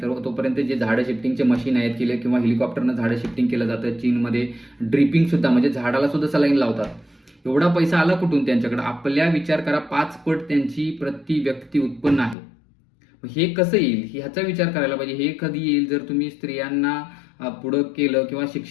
तर तोपर्यंत जे झाडं शिफ्टिंगचे मशीन आहेत केले किंवा हेलिकॉप्टरनं झाडं शिफ्टिंग केलं जातं. चीनमध्ये ड्रिपिंग सुद्धा, म्हणजे झाडाला सुद्धा सलाईन लावतात. एवढा पैसा आला कुठून त्यांच्याकडे? आपल्या विचार करा, 5 पट त्यांची प्रति व्यक्ती उत्पन्न आहे. हे कसं येईल ह्याचा विचार करायला पाहिजे. हे कधी येईल? जर तुम्ही स्त्रियांना पुढं केलं किंवा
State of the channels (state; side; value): drops out; right; at 12.4 s